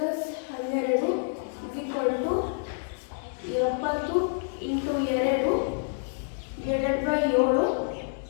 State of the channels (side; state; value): right; silent; digital silence